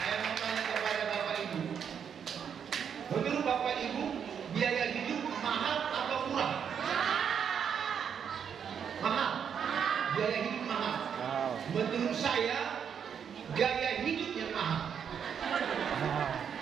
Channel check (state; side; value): quieter; left; 7.6 dB